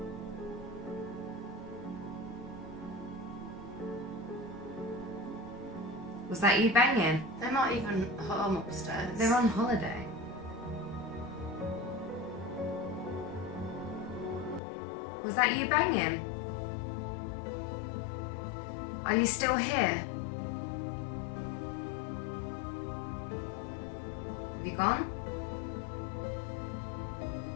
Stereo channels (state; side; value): drops out; right; at 14.6 s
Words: Was that you banging? They're not even home upstairs. They're on holiday. Was that you banging? Are you still here? Have you gone?